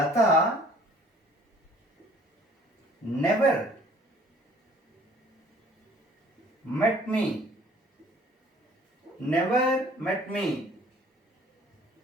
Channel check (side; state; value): both; normal; correlation 0.55